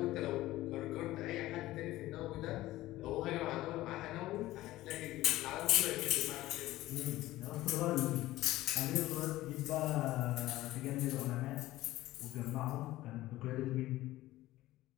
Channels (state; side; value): quieter; right; 16.5 dB